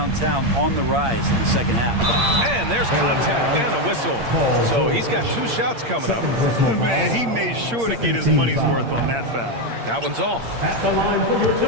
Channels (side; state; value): left; late; 8.6 ms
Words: on the rise in the second half. And there's contact and a whistle. So he's got 2 shots coming up. Man, he made sure to get his money's worth on that foul. That one's off. At the line for your